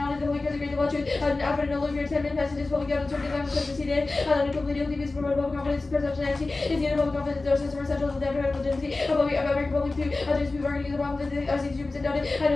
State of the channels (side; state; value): right; quieter; 3.3 dB